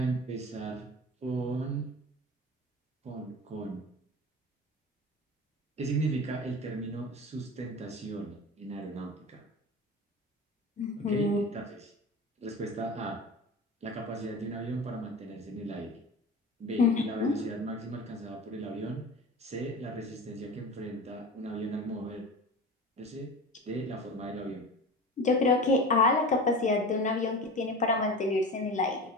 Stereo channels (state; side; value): normal; both; correlation 0.32